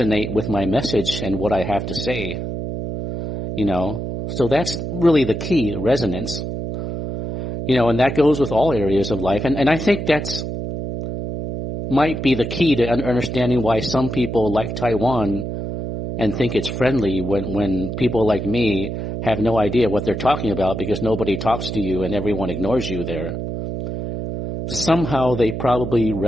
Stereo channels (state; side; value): noise; right; hum, 5 dB below the sound